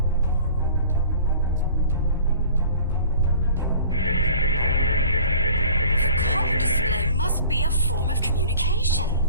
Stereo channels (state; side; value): inverted; both; correlation -0.46